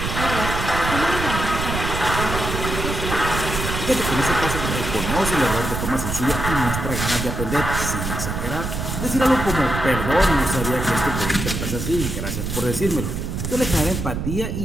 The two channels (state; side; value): noise; right; rumble, 4 dB below the sound